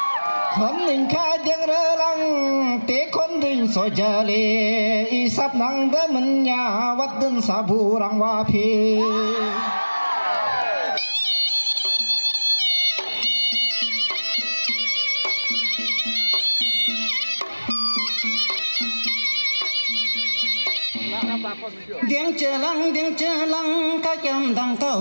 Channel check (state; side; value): inverted; both; correlation -1.00